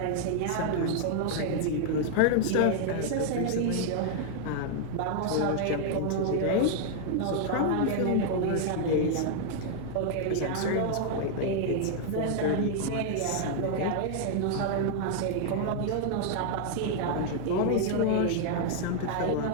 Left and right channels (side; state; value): both; different; correlation 0.00